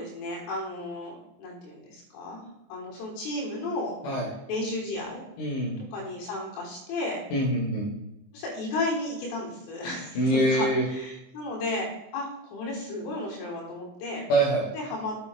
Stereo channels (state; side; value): late; right; 23 ms